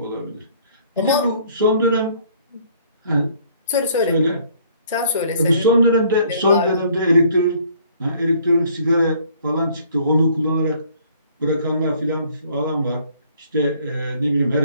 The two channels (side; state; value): both; inverted; correlation -0.59